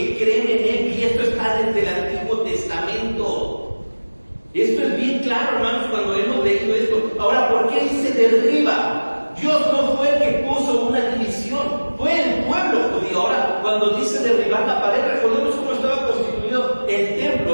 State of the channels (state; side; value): inverted; both; correlation -1.00